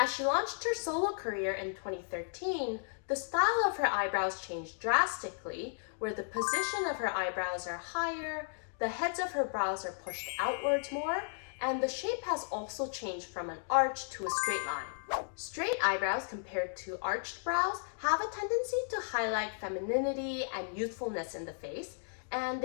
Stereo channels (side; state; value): right; silent; digital silence